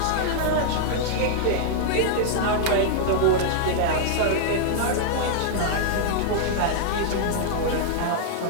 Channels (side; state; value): both; different; correlation -0.01